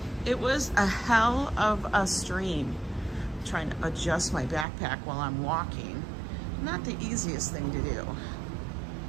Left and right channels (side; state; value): left; drops out; at 4.7 s